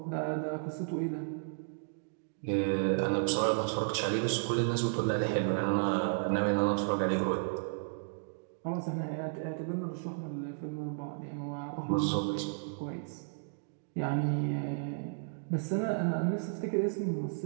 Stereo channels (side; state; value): left; silent; digital silence